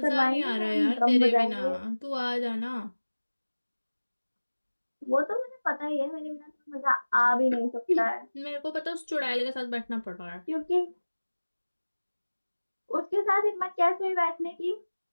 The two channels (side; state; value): both; inverted; correlation -1.00